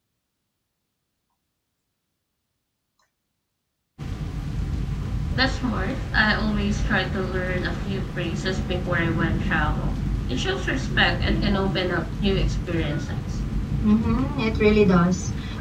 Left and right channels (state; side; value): identical; both; correlation 1.00